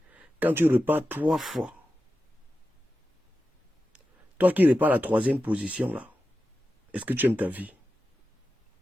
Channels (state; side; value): normal; both; correlation 0.92